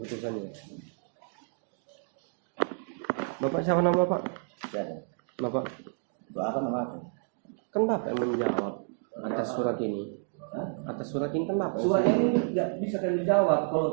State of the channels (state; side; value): silent; left; 57 dB below the other